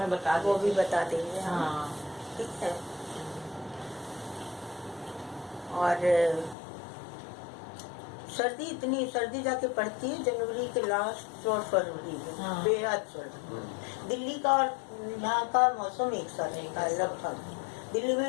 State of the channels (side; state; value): right; drops out; at 6.6 s